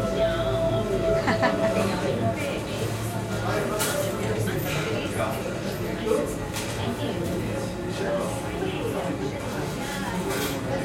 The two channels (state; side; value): identical; both; correlation 1.00